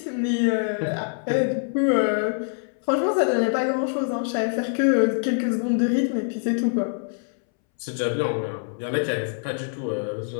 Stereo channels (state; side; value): silent; right; 62 dB below the other